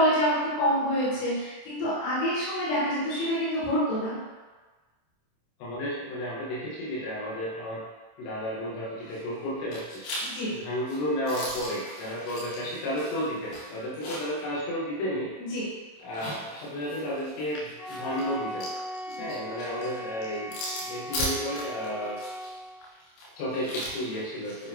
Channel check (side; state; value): right; late; 27 ms